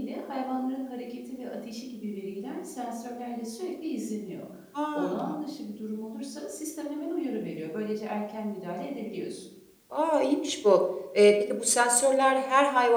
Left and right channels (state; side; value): identical; both; correlation 1.00